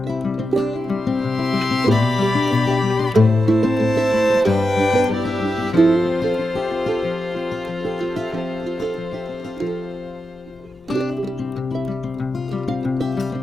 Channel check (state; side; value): normal; both; correlation 0.89